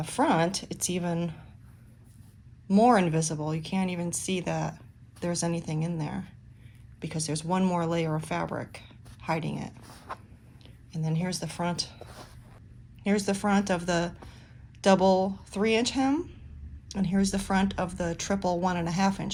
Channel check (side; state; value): both; identical; correlation 1.00